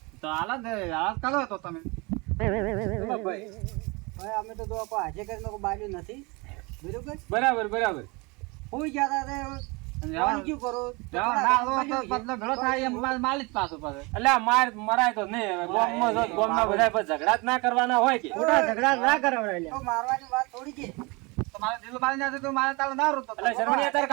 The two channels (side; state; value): left; quieter; 27.0 dB